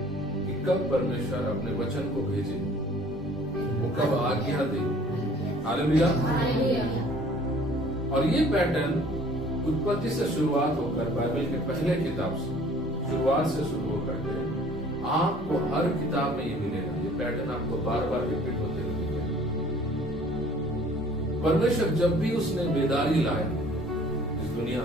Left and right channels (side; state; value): both; normal; correlation 0.53